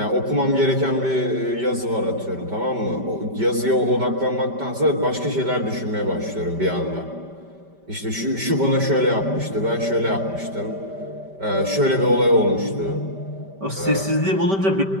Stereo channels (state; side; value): late; left; 5.1 ms